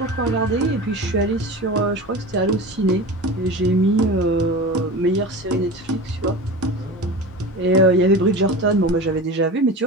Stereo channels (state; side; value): normal; both; correlation 0.31